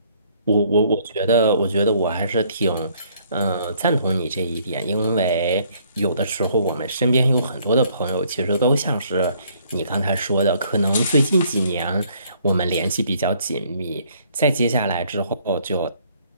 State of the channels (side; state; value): both; inverted; correlation -0.64